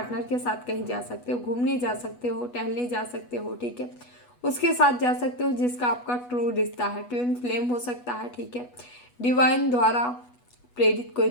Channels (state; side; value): late; right; 8.2 ms